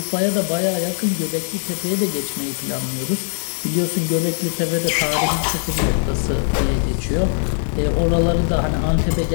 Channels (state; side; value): silent; right; 57 dB below the other